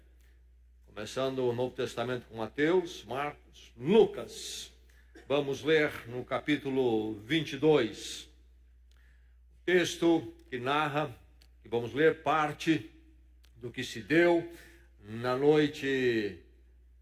começando o Novo Testamento com Mateus, Marcos, Lucas. Vamos ler no capítulo 22. O texto que narra, que vamos ler parte do que se deu na noite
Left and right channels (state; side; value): identical; both; correlation 1.00